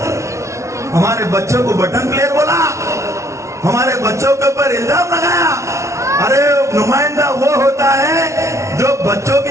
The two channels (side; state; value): left; late; 0.14 ms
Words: हमारे बच्चों को बटन प्लेयर बोला, हमारे बच्चों के ऊपर इल्जाम लगाया। अरे नुमाइंदा वो होता है जो बच्चों की